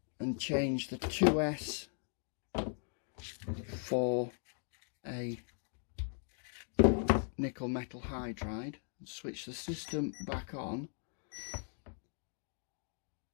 and change the 2S for a nickel metal hydride and switch the system back on,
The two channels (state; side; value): silent; right; 52 dB below the other